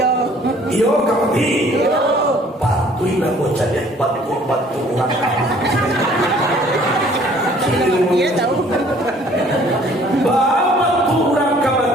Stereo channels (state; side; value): normal; both; correlation 0.56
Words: Iyo kamati. Patuhi lah bocah dia. Batu orang. Iya tahu. Batu orang